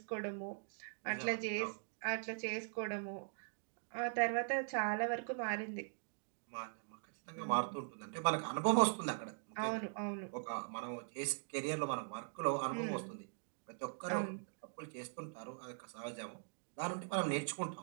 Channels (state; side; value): silent; left; digital silence